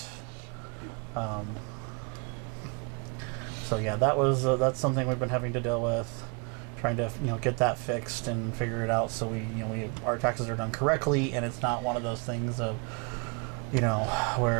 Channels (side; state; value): left; quieter; 33.4 dB